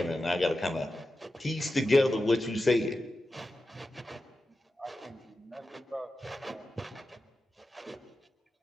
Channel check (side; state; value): both; normal; correlation 0.92